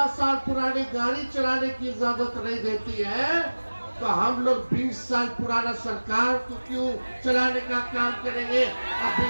साल पुरानी गाड़ी चलाने की इजाजत नहीं देती है, तो हम लोग 20 साल पुराना सरकार को क्यों चलाने का काम करेंगे? अब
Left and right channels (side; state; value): both; inverted; correlation -1.00